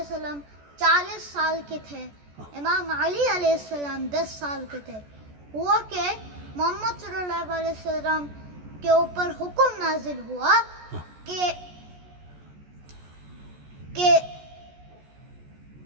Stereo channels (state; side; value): late; left; 14 ms